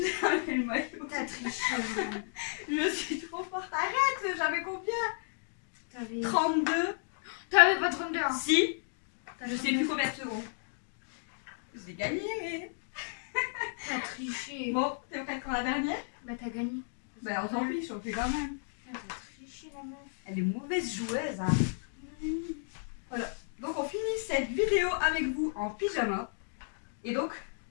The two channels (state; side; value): silent; right; digital silence